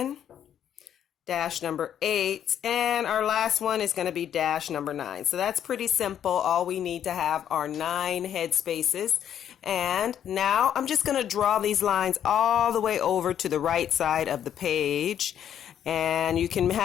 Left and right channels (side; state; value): right; quieter; 9.7 dB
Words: dash number 8, and our last one is going to be dash number 9. So that's pretty simple. All we need to have are 9 head spaces. And now I'm just going to draw these lines all the way over to the right side of the page. And you can